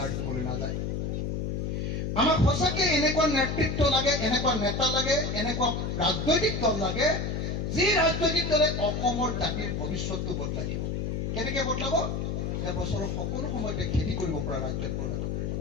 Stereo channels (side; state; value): left; noise; hum, 2 dB below the sound